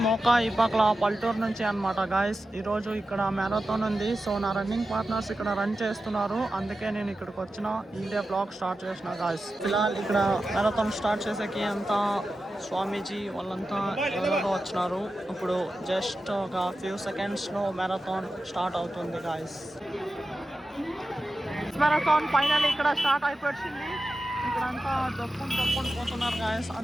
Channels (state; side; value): normal; both; correlation 0.92